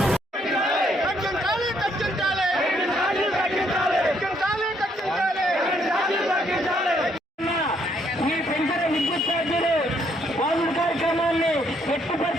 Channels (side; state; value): both; normal; correlation 0.70